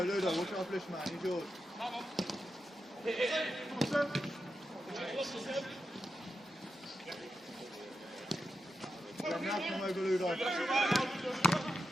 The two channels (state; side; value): normal; both; correlation 0.88